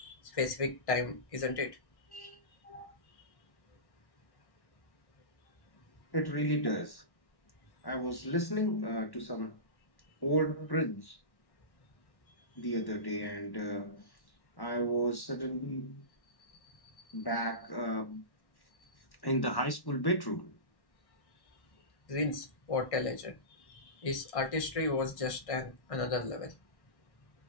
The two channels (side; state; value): right; late; 1.1 ms